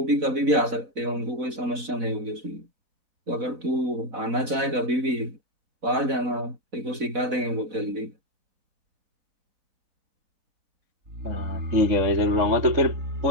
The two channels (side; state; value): left; late; 4.0 ms